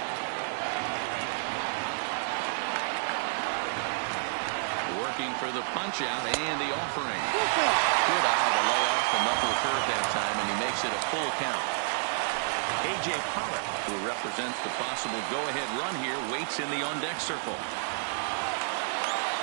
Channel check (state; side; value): silent; left; 56 dB below the other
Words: Working for the punch out and the offering. Good eye to lay off the knuckle curve that time, and he makes it a full count. A.J. Pollock, who represents the possible go-ahead run here, waits in the on-deck circle.